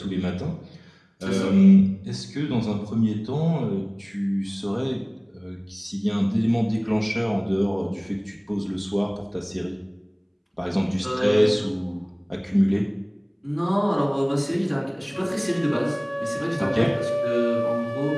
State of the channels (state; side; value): identical; both; correlation 1.00